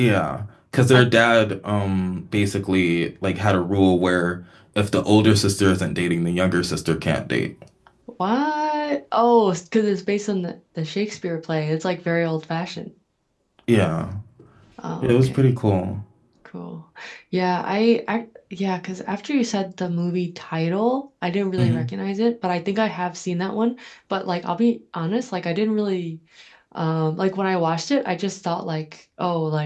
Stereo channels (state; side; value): identical; both; correlation 1.00